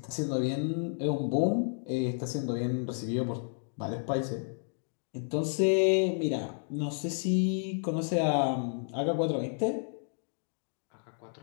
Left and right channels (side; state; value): right; silent; digital silence